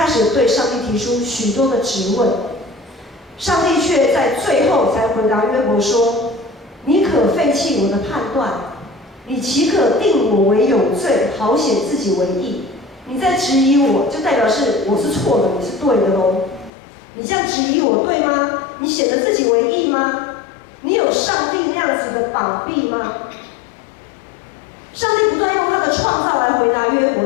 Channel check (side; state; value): right; drops out; at 16.7 s